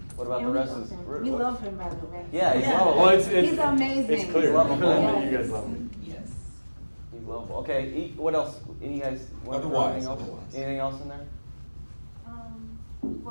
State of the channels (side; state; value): both; inverted; correlation -1.00